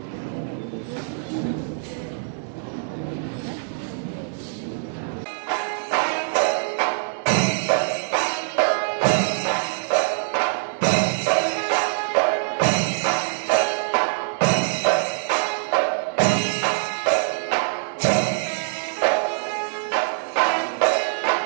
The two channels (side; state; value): left; silent; digital silence